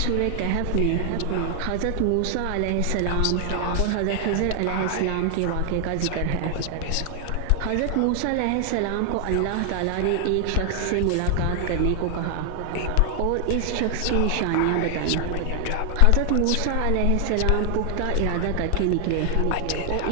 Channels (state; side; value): different; both; correlation 0.00